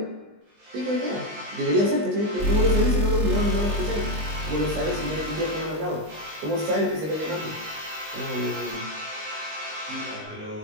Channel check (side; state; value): left; late; 19 ms